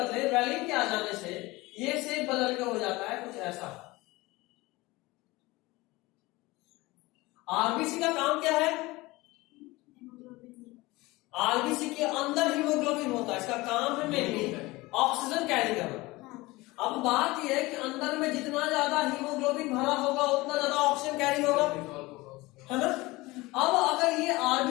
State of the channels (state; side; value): quieter; right; 21.2 dB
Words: वैलिन के आ जाने से ये शेप बदल के हो जाता है कुछ ऐसा। आरबीसी का काम क्या है? आरबीसी के अंदर हीमोग्लोबिन होता है, इसका काम है मेनली ऑक्सीजन कैरी करना। अब बात यह है कि अंदर में जितना ज्यादा हीमोग्लोबिन भरा होगा उतना ज्यादा ऑक्सीजन कैरी होगा, है ना। अब अगर ये